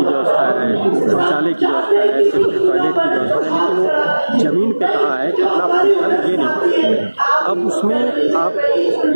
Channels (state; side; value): inverted; both; correlation -1.00